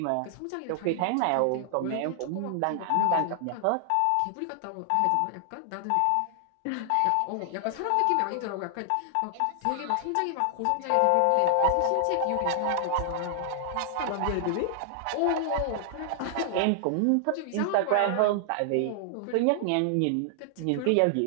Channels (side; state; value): both; different; correlation 0.00